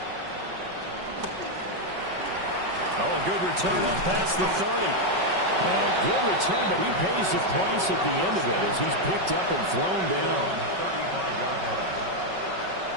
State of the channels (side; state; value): left; late; 5.3 ms